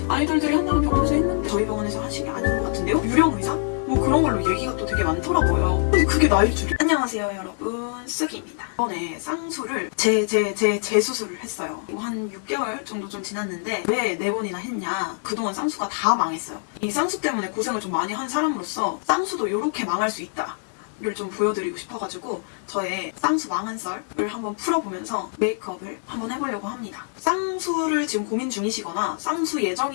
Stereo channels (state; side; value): silent; right; digital silence